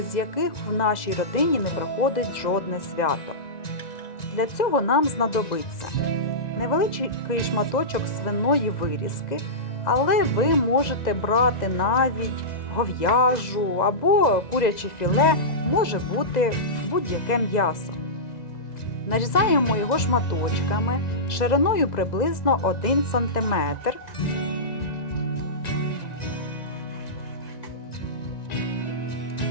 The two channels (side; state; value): right; late; 1.9 ms